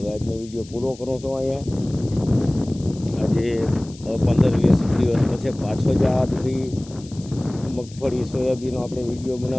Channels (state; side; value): noise; left; hiss, 21 dB below the sound